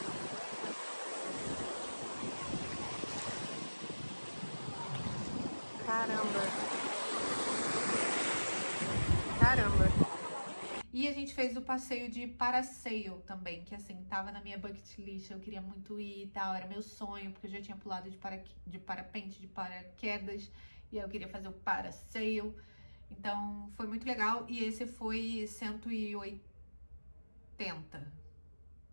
Caramba. E a gente fez o passeio de parasail também, que assim, tava na minha bucket list, eu queria muito ir e tal, era meu sonho, porque eu já tinha pulado de parapente, de paraquedas, e aí eu queria fazer o parasail. Então, foi muito legal, e esse foi 180,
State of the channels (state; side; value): inverted; both; correlation -1.00